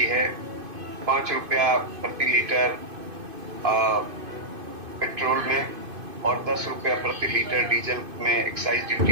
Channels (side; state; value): left; late; 2.5 ms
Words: है 5 रुपया प्रति लीटर पेट्रोल में और 10 रुपया प्रति लीटर डीजल में एक्साइज